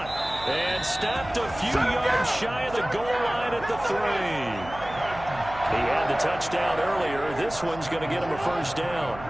and stopped a few yards shy of the goal line at the 3. He had the touchdown earlier. This one's going to get him a first down.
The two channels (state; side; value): noise; right; hum, 14 dB below the sound